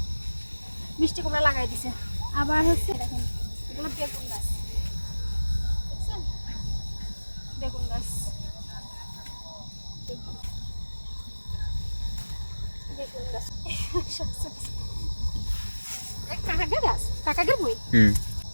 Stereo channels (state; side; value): inverted; both; correlation -1.00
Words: কুমড়া লাগাই দিছে। আবার হচ্ছে দেখেন এগুলো বেগুন গাছ, দেখছেন, বেগুন গাছ, কাকাগের বই